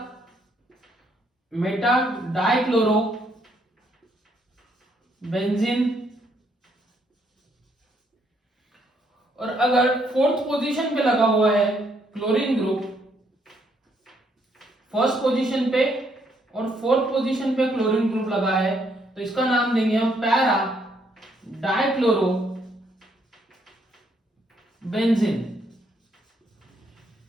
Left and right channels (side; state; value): both; normal; correlation 0.72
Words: मेटा डाइक्लोरोबेंजीन। और अगर फोर्थ पोजीशन पे लगा हुआ है क्लोरीन ग्रुप, फर्स्ट पोजीशन पे और फोर्थ पोजीशन पे क्लोरीन ग्रुप लगा है, तो इसका नाम देंगे हम पैरा डाइक्लोरोबेंजीन।